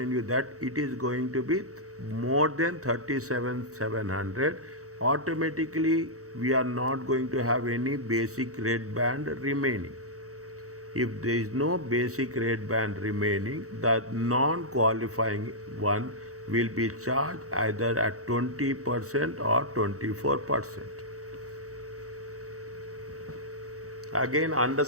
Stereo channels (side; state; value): left; late; 0.65 ms